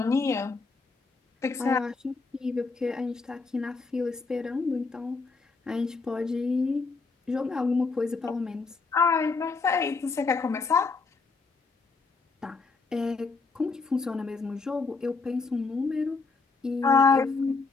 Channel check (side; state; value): right; quieter; 4.2 dB